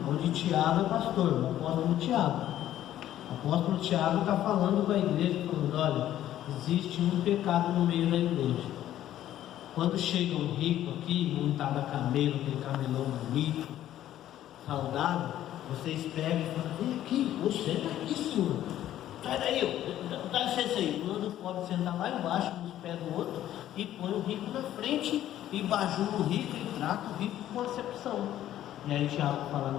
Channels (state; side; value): quieter; right; 12.5 dB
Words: onde Tiago é pastor, o apóstolo Tiago. O apóstolo Tiago está falando com a igreja, falando, olha, existe um pecado no meio da igreja. Quando chega um rico aqui, montado a camelo, aquele camelão bonito, saudável, vocês pegam e falam, vem aqui, você está aqui, senhor. Sai daí, dá licença aí. Manda o pobre sentar lá embaixo, nos pés do outro, e põe o rico na frente, e bajula o rico, e trata o rico com acepção. E aí Tiago fala,